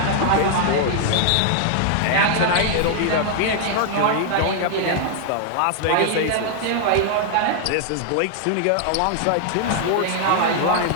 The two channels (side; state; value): both; different; correlation 0.00